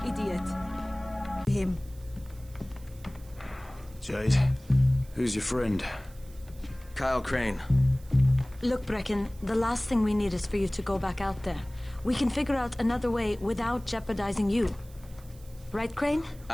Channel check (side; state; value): right; noise; hiss, 25 dB below the sound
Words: idiot! Him. Jade, who's your friend? Kyle Crane. Look, Brecken, the last thing we need is for you to go back out there. We can figure out another way without jeopardizing you. Right, Crane?